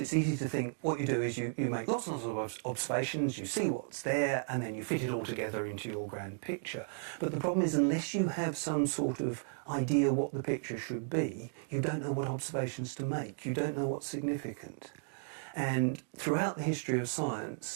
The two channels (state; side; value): silent; left; digital silence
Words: easy to think what you do is you make lots and lots of observations, you see what's there, and then you fit it all together into your grand picture. But the problem is, unless you have some sort of idea what the picture should be, you don't know what observations to make, you don't know what's significant. And throughout the history of